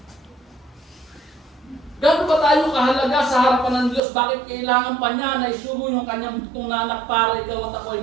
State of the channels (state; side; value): drops out; left; at 4.0 s